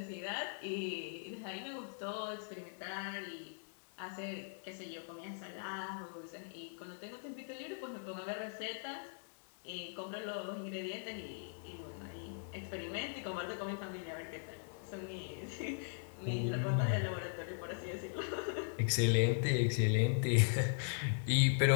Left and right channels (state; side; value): silent; right; digital silence